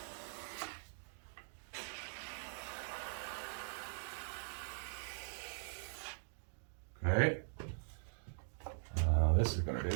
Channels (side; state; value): left; silent; digital silence